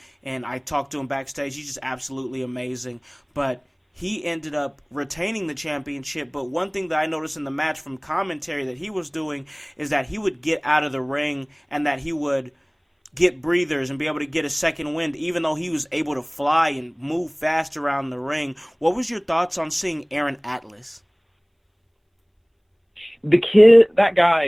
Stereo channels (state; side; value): identical; both; correlation 1.00